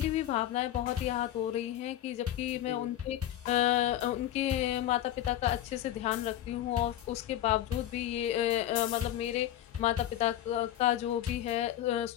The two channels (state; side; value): quieter; right; 12.6 dB